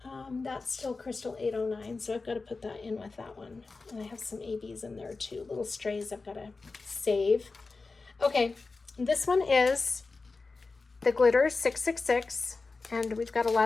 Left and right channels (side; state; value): right; quieter; 4.0 dB